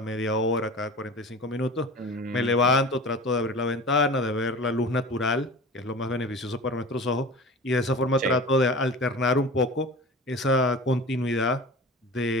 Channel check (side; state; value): both; normal; correlation 0.35